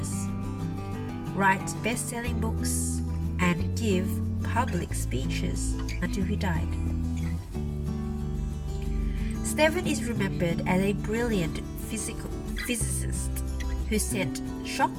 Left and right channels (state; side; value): identical; both; correlation 1.00